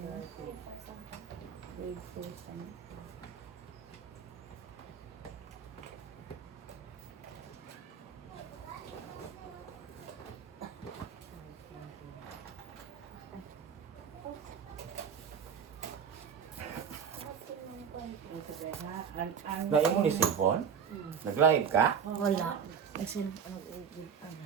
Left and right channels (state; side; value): quieter; left; 7.1 dB